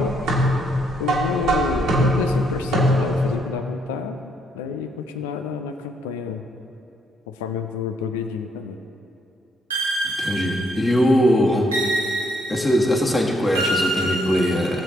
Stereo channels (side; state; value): both; normal; correlation 0.72